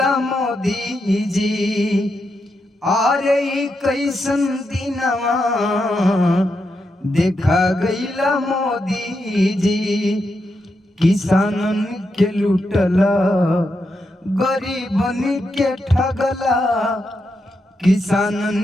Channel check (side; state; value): both; normal; correlation 0.84